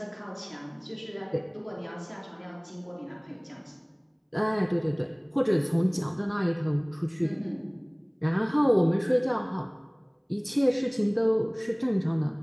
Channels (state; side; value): identical; both; correlation 1.00